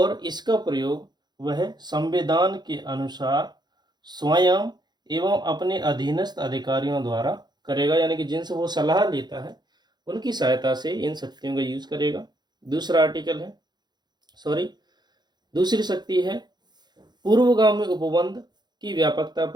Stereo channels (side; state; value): left; late; 0.21 ms